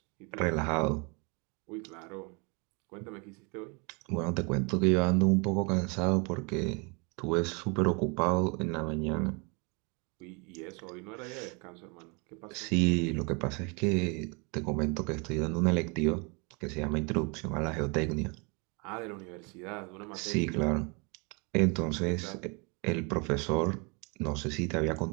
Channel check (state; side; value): quieter; left; 31.8 dB